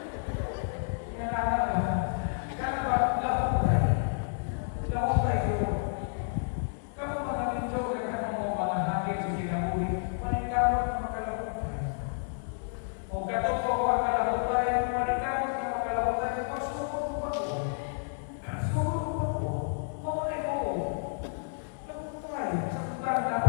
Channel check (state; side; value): silent; right; digital silence